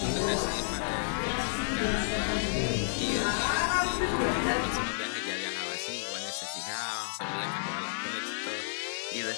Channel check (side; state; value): right; silent; 57 dB below the other